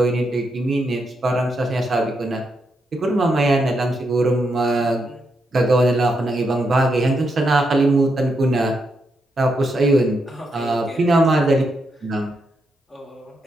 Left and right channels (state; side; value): normal; both; correlation 0.82